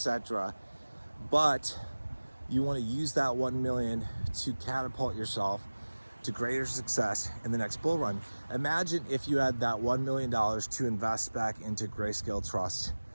But you want to use that 1 million to catapult yourself to greater success in the next bull run. Imagine if you had that $1 million to invest back into Grayscale Trust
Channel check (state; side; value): inverted; both; correlation -1.00